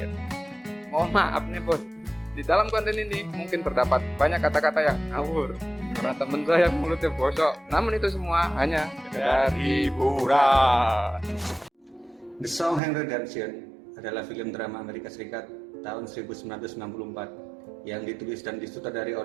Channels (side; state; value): left; drops out; at 12.8 s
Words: Mohon maaf nih bos, di dalam konten ini mungkin terdapat banyak kata-kata yang ngawur karena temen saya mulutnya bosok. Namun itu semua hanya sekedar hiburan. The Sound Redemption adalah film drama Amerika Serikat tahun 1964 yang ditulis dan disutradari